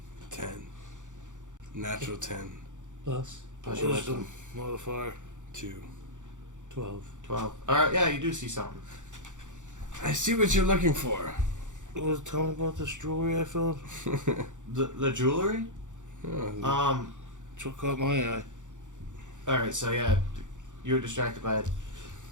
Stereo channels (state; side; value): late; left; 0.86 ms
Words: 10. Natural 10. Plus Plus your wisdom. Modifier. 2. 12. 12. Alright, yeah, you do see something. I see what you're looking for. Tell me about this jewelry I found. The jewelry? Oh, It's what caught my eye. Alright, so yeah, you were distracted by it.